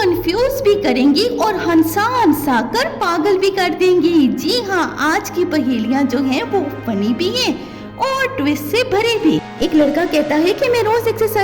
भी करेंगी और हंसा हंसा कर पागल भी कर देंगी। जी हाँ, आज की पहेलियां जो हैं वो फनी भी हैं और ट्विस्ट से भरी भी। एक लड़का कहता है कि मैं रोज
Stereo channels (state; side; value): identical; both; correlation 1.00